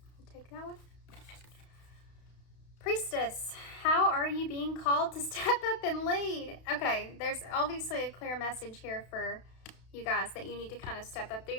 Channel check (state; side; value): late; right; 32 ms